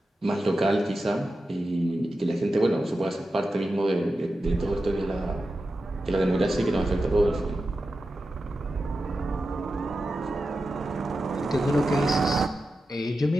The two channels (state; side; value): normal; both; correlation 0.91